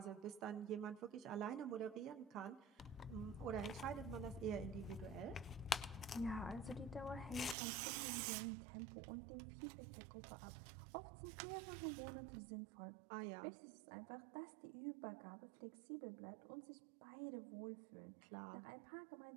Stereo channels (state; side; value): drops out; left; at 7.6 s